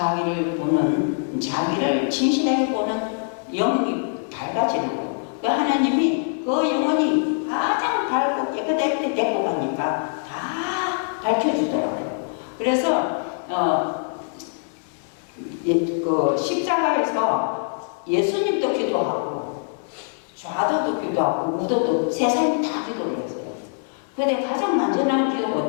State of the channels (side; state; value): right; silent; 62 dB below the other